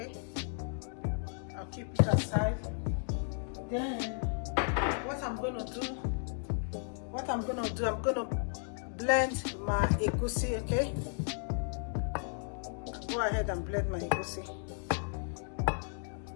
I'll keep it aside. Then what I'm gonna do, I'm gonna blend my egusi. Okay, go ahead and blend my egusi.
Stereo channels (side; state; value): right; silent; 55 dB below the other